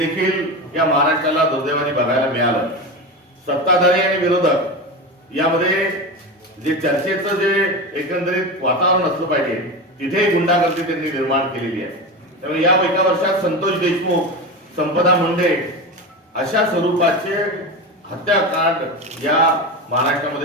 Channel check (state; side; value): normal; both; correlation 0.22